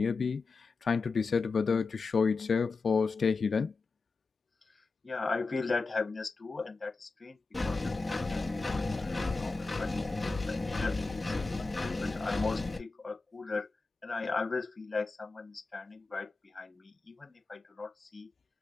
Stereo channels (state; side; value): quieter; right; 4.0 dB